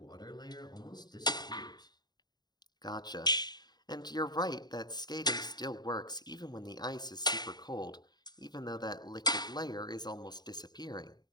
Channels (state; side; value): late; right; 0.20 ms